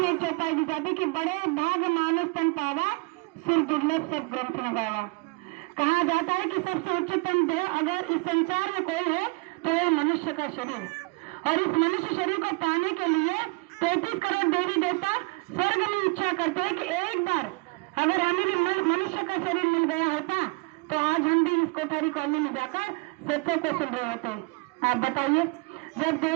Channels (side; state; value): left; quieter; 28.1 dB